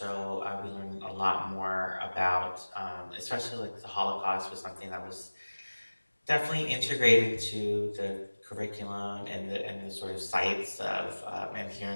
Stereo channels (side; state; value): both; inverted; correlation -1.00